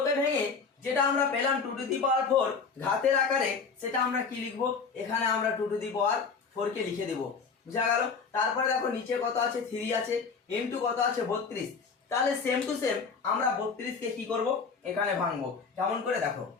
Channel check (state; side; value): quieter; right; 5.2 dB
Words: কে ভেঙে যেটা আমরা পেলাম 2⁴ ঘাতের আকারে, সেটা আমরা কি লিখবো? এখানে আমরা 2⁴ কে লিখে দেব। বুঝা গেল? তারপরে দেখো নিচে কত আছে? 3 আছে, ইনটু কত আছে? 32। তাহলে সেম টু সেম আমরা 32 কে কি করব? এখানে ভাঙবো। কেমন করে দেখো?